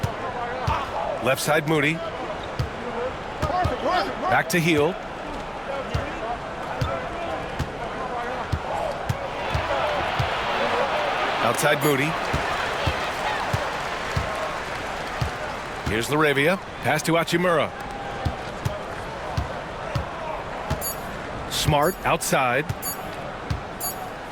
Left side Moody. Back to Hield. Outside Moody. Here's Laravia. Pass to Hachimura. Smart outside.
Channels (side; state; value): both; identical; correlation 1.00